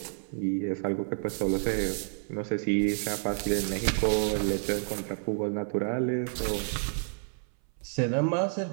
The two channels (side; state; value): left; silent; 58 dB below the other